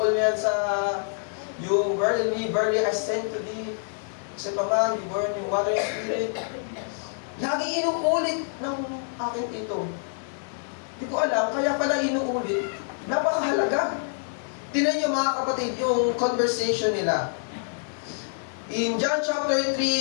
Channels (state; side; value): silent; right; digital silence